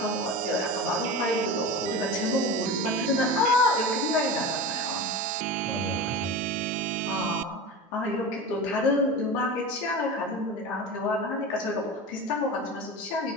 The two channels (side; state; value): both; normal; correlation 0.28